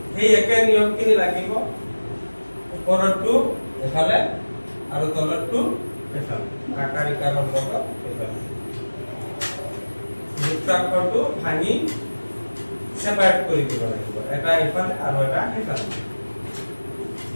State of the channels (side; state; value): both; inverted; correlation -1.00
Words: এই একে নিয়মখিনি লাগিব ওপৰটো এফালে আৰু তলৰটো এফালে আকাৰ ইকাৰৰ লগত এফালে যুক্তাক্ষৰটো ভাঙি সেপাৰেট কৰি দিব লাগিব এটা এফালে আৰু এটা এফালে